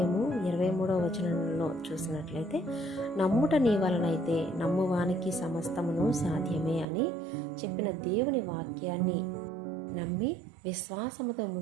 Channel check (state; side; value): drops out; left; at 6.9 s